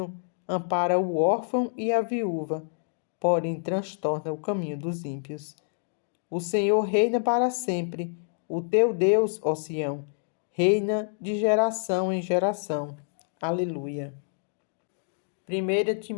ampara o órfão e a viúva, porém transtorna o caminho dos ímpios. O Senhor reina para sempre, o teu Deus, ó Sião, reina de geração em geração. Aleluia. 1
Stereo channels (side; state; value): right; silent; digital silence